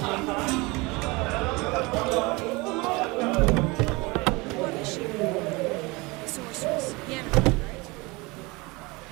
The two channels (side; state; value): left; quieter; 24.9 dB